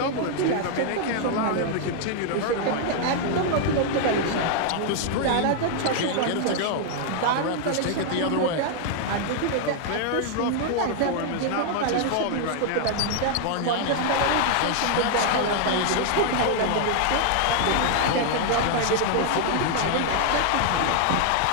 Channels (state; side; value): different; both; correlation 0.00